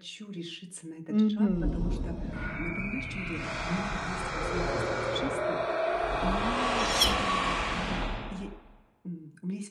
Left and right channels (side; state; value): both; identical; correlation 1.00